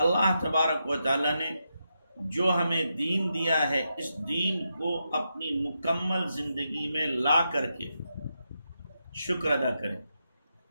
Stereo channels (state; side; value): inverted; both; correlation -0.85